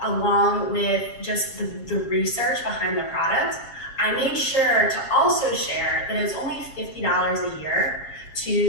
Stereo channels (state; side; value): late; right; 7.3 ms